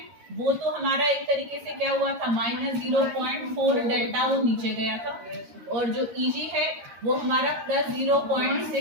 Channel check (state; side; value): late; left; 13 ms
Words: वो तो हमारा एक तरीके से क्या हुआ था, -0.4 डेल्टा O नीचे गया था, और जो EG है वो हमारा